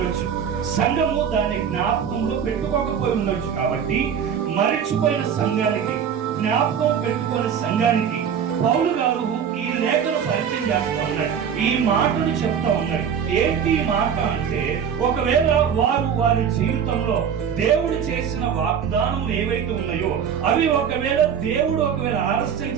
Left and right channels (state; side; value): quieter; left; 7.8 dB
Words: సంఘము దాన్ని జ్ఞాపకంలో పెట్టుకోకపోయి ఉండొచ్చు. కాబట్టి మరిచిపోయిన సంఘానికి, జ్ఞాపకం పెట్టుకునే సంఘానికి పౌలు గారు ఈ లేఖను పరిచయం చేస్తా ఉన్నాడు. ఈ మాటను చెప్తా ఉన్నాడు. ఏంటి మాట అంటే, ఒకవేళ వారి జీవితంలో దేవుడు చేసిన వాగ్దానములు ఏవైతే ఉన్నాయో అవి ఒకవేళ దేవుడు ఆలస్యం